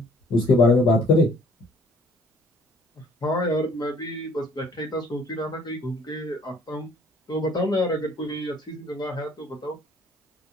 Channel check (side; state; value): both; normal; correlation 0.58